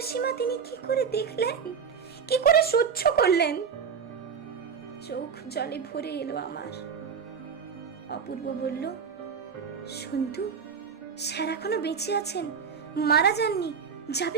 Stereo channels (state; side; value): quieter; left; 6.5 dB